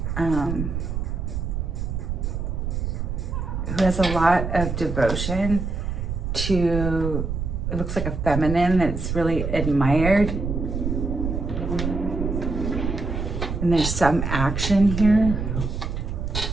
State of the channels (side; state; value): right; noise; rumble, 3 dB below the sound